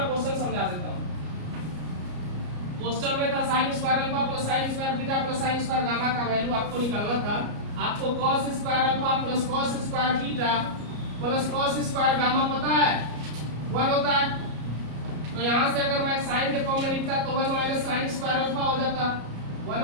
क्वेश्चन समझा देता हूं। क्वेश्चन में था sine square alpha plus sine square beta plus sine square gamma का वैल्यू आपको निकालना था। आपको cos square alpha plus cos square beta plus cos square gamma पता है 1 होता है, तो यहां से अगर मैं साइन के फॉर्म में लिखता तो 1 माइनस साइन स्क्वायर अल्फा हो जाता, 1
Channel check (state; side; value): late; left; 33 ms